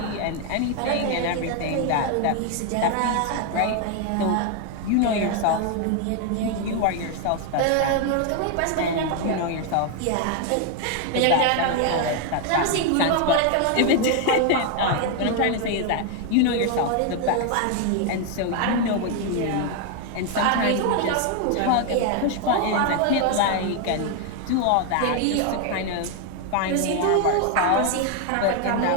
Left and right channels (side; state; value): both; different; correlation 0.01